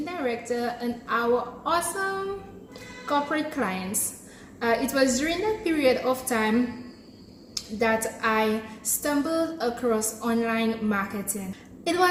director and our awesome corporate clients. It was during that period of time that I stumbled across online marketing. It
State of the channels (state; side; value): identical; both; correlation 1.00